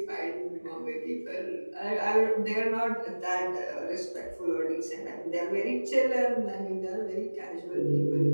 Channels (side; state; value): both; inverted; correlation -1.00